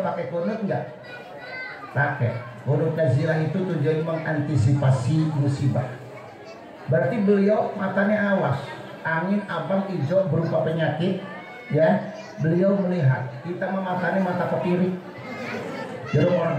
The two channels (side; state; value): both; identical; correlation 1.00